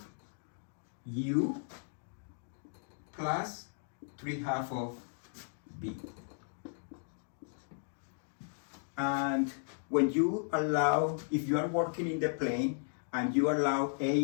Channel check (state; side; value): silent; right; digital silence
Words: u plus 3/2 of b. And when you allow, if you are working in the plane and you allow